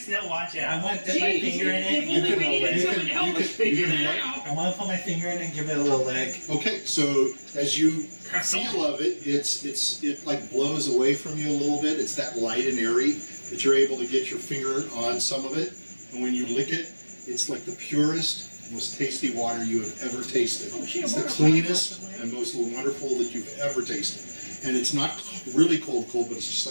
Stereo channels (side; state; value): both; inverted; correlation -1.00